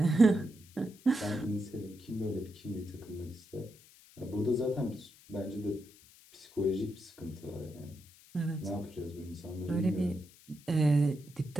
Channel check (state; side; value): noise; left; hiss, 24 dB below the sound